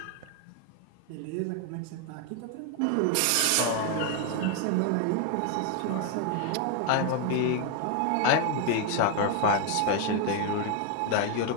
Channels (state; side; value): different; both; correlation 0.01